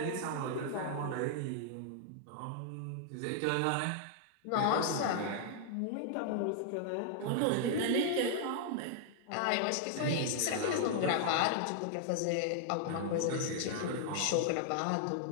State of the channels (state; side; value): different; both; correlation -0.01